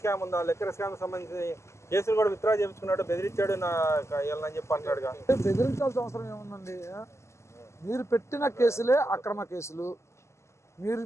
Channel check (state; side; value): late; right; 0.13 ms